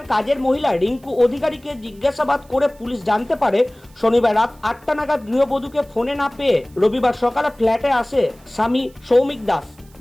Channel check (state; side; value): noise; right; hiss, 29 dB below the sound